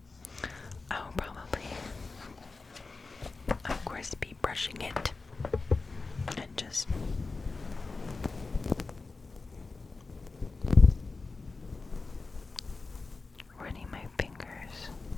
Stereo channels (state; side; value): quieter; right; 3.9 dB